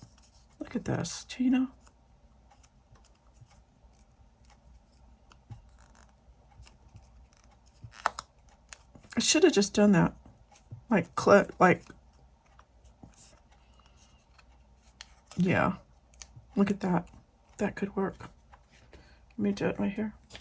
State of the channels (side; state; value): both; identical; correlation 1.00